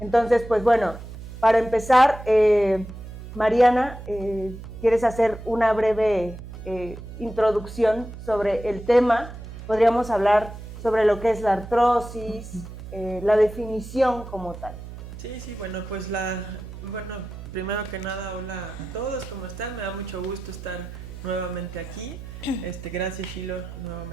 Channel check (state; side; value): noise; right; hum, 12 dB below the sound